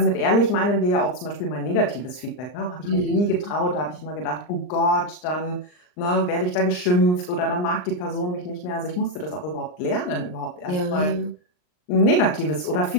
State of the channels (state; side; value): late; right; 39 ms